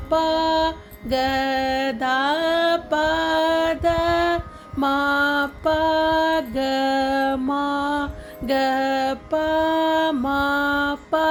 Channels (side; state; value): both; identical; correlation 1.00